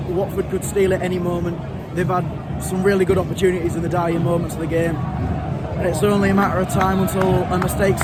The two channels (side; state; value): both; identical; correlation 1.00